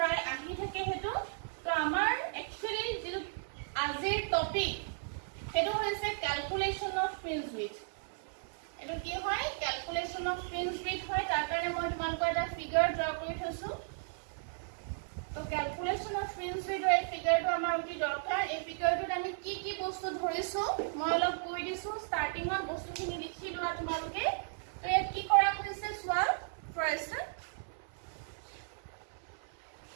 আহি থাকে হেতু তো আমাৰ একচুয়ালি যেটো আজিৰ টপিক হেতু হৈছে ক্যালকুলেশন অফ ফ্ৰিঞ্জ উইক এটো কি হয় ক্যালকুলেশন অফ ফ্ৰিঞ্জ উইক হয় তাৰ কাৰণে মই তোমালোকৰ এটা ফিগাৰ ড্ৰ কৰি থৈছো তো ক্যালকুলেশন অফ ফ্ৰিঞ্জ উইকৰ এই ফিগাৰটো আমাৰ অতি দৰকাৰ এই ফিগাৰটোত আমি কি বস্তু ধৰিছো মই অলপ কৈ দিছো ষ্টাৰ্টিংত বস্তুখিনি লিখি লোৱা তোমালোকে তো ইয়াত কি কৰা হৈছে চোৱা ফাৰ্ষ্ট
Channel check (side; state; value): left; silent; 54 dB below the other